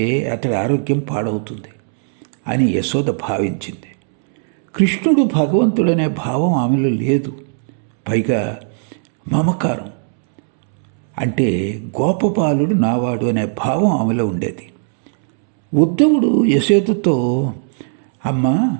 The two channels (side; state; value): left; silent; 68 dB below the other